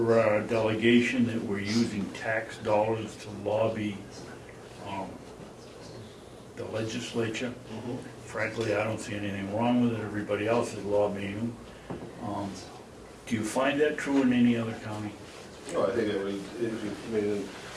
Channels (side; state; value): both; identical; correlation 1.00